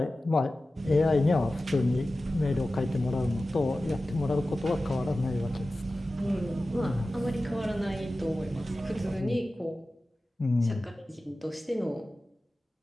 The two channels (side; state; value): both; normal; correlation 0.95